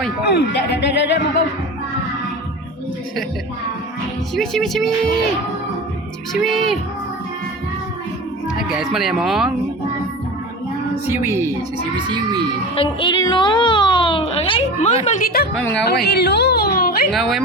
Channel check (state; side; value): normal; both; correlation 0.31